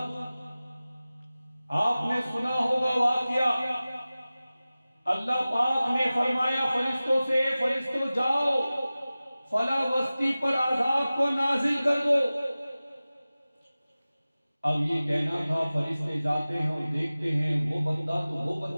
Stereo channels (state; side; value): inverted; both; correlation -0.97